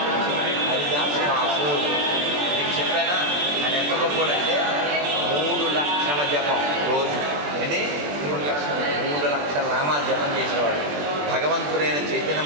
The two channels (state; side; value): late; left; 21 ms